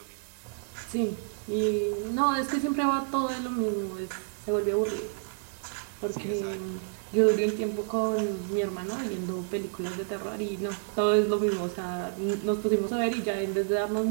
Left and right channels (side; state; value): left; silent; digital silence